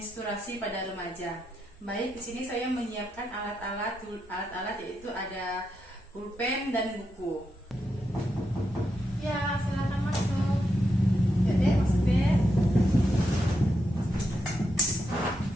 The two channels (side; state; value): both; normal; correlation 0.84